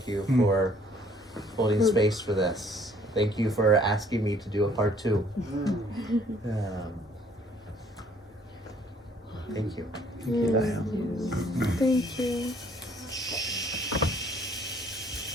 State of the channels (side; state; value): both; normal; correlation 0.60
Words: you for holding space for this. Thank you for asking me to do a part 2. Thank you. Thank you, Dyon. Thank you.